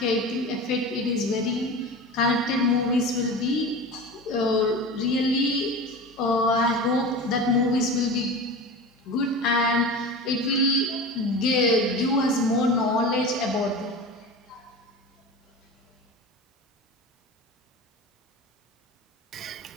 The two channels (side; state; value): both; normal; correlation 0.31